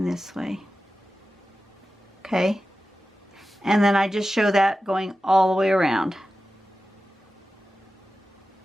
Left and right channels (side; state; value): both; normal; correlation 0.93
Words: this way. Okay? And then I just show that going all the way around.